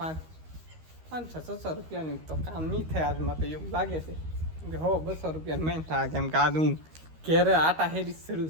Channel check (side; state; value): left; late; 13 ms